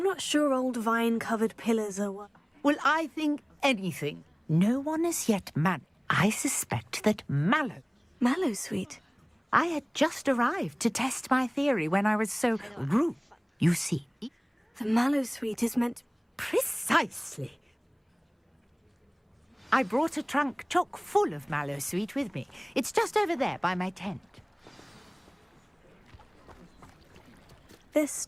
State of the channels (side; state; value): both; identical; correlation 1.00